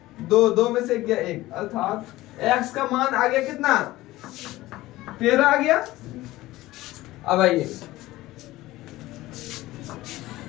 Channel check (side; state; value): right; quieter; 17.5 dB